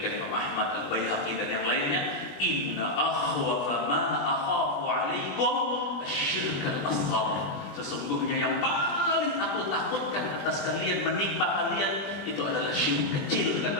Imam Ahmad, Al-Baihaqi dan yang lainnya, inna akhwafa ma akhafu alaikum asyirk al-asghar. Sesungguhnya yang paling aku takutkan atas kalian, menimpa kalian, itu adalah syirik kecil,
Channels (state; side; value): late; right; 20 ms